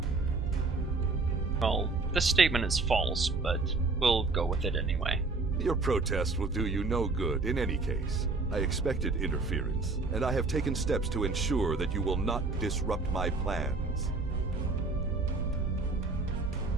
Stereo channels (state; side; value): quieter; left; 3.7 dB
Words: Well, this statement is false, but we'll go with it anyway. Your protest will do you no good in any case. I expected interference, and I have taken steps to ensure that you will not disrupt my plans.